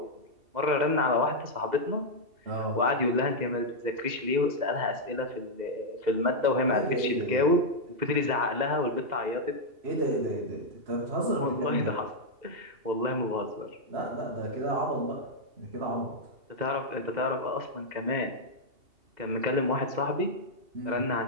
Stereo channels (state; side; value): late; left; 2.7 ms